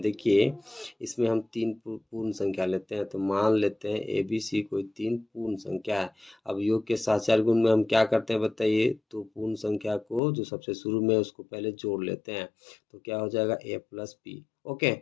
देखिए, इसमें हम तीन पूर्ण संख्या लेते हैं, तो मान लेते हैं ए बी सी कोई तीन पूर्ण संख्या है। अब योग के सहचार्य गुण में हम क्या करते हैं बताइए, तो पूर्ण संख्या को जो सबसे शुरू में उसको पहले जोड़ लेते हैं, तो क्या हो जाएगा, ए प्लस बी। ओके,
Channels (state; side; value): drops out; right; at 10.2 s